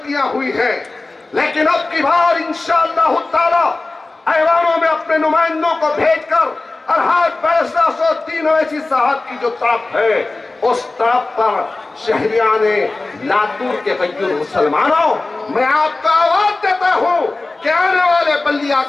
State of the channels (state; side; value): quieter; right; 3.3 dB